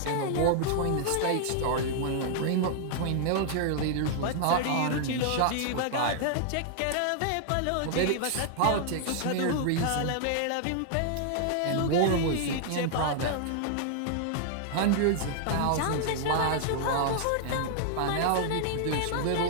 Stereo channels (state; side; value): different; both; correlation -0.01